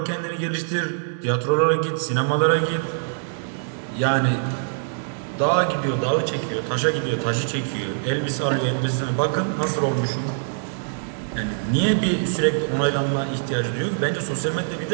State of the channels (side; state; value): left; silent; 63 dB below the other